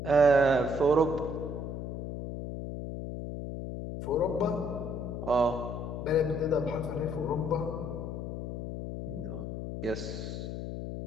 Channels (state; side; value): noise; left; hum, 6 dB below the sound